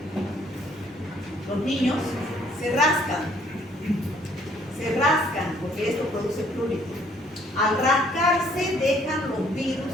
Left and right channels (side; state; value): both; normal; correlation 0.63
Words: Los niños se rascan porque esto produce prurito. Al rascarse dejan los